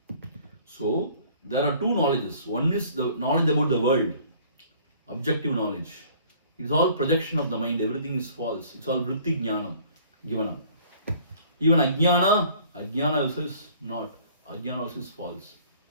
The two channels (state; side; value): inverted; both; correlation -0.54